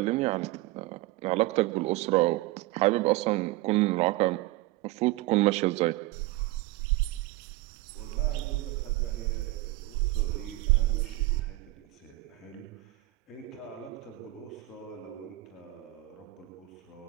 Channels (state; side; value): quieter; left; 19.2 dB